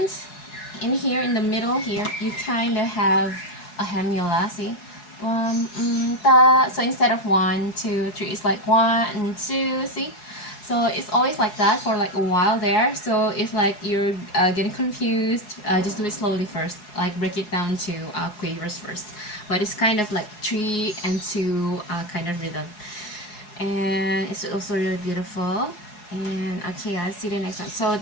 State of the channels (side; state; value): right; late; 4.7 ms